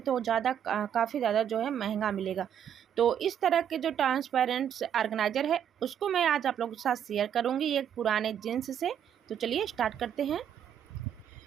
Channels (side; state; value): left; quieter; 9.2 dB